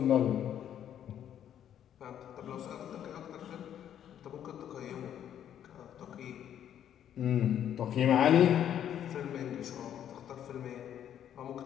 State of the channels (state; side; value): quieter; right; 10.1 dB